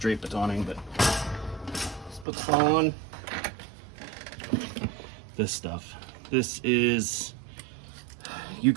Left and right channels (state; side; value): drops out; left; at 2.2 s